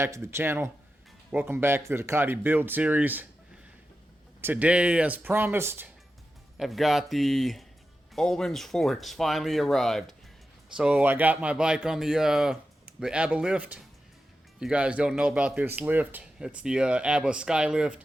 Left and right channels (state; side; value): normal; both; correlation 0.91